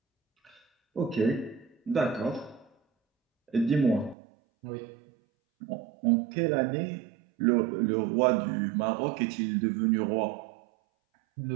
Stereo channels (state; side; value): drops out; left; at 4.2 s